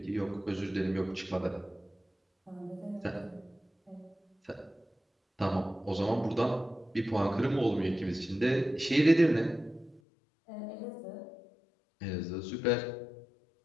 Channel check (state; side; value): drops out; right; at 10.0 s